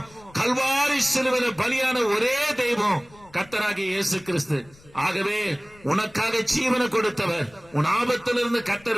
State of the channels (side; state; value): left; noise; rumble, 26 dB below the sound